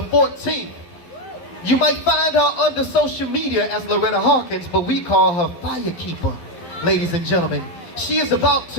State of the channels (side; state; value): right; late; 12 ms